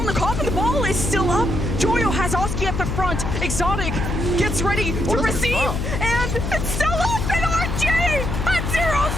the coffin, the ball is still up. Joyo has Oski at the front. Exotic gets ready to receive, and It's still open, RG! At 0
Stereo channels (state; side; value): noise; left; hum, 3 dB below the sound